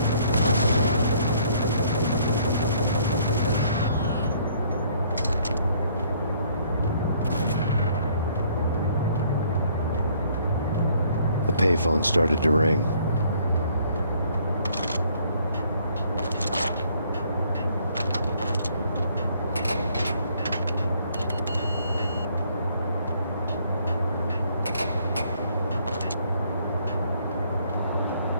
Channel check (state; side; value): inverted; both; correlation -0.63